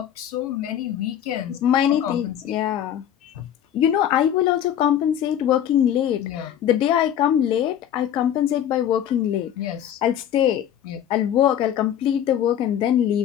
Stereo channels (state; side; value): quieter; right; 10.3 dB